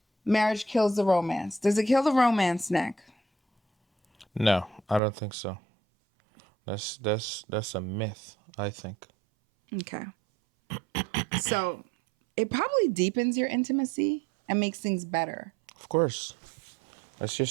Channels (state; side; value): drops out; left; at 5.0 s